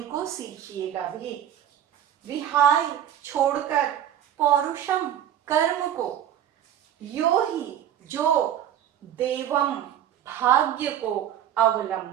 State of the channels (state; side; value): quieter; left; 10.5 dB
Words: सीखिएगा भी। विहाय छोड़कर, पौरुषम कर्म को, यो ही जो, देवम भाग्य को,